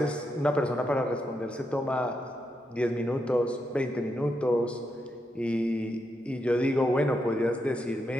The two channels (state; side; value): normal; both; correlation 0.83